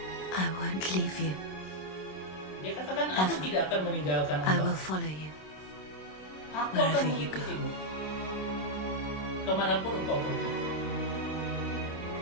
I won't leave you. Dia katakan, aku tidak akan meninggalkan I will engkau. follow you. Aku akan wherever you go. mengikutimu kemanapun engkau pergi.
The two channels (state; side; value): late; right; 26 ms